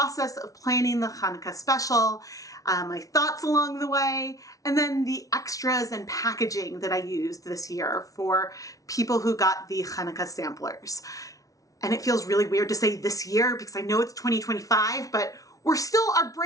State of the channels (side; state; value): right; late; 0.17 ms